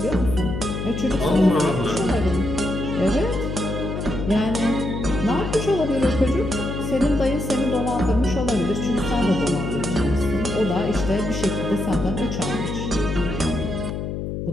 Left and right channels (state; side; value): noise; left; hum, 4 dB below the sound